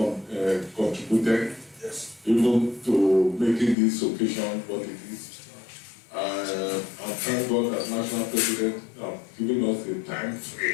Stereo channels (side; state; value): right; drops out; at 3.8 s